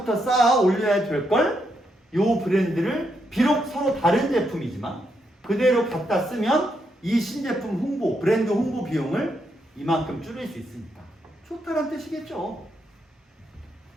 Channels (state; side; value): normal; both; correlation 0.79